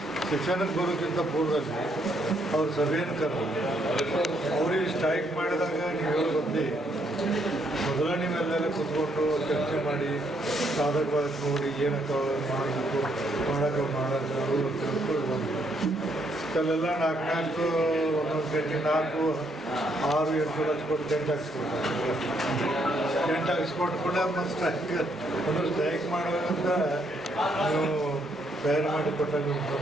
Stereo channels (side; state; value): both; normal; correlation 0.73